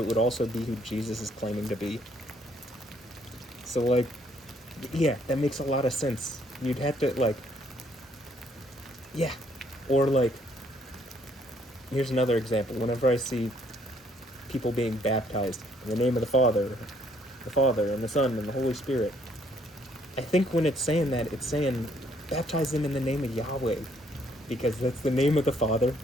it would also be who Jesus is claiming to be. So, like, yeah, that makes a lot of sense. You'd have to, like, yeah, or, like, here's another example. Whenever I see people being baptized in the name of the Father, and the Son, and the Holy Spirit, I think when it's saying that, it's saying baptize them in the name of Yahweh, because that's the name of the Father.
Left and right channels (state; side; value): normal; both; correlation 0.66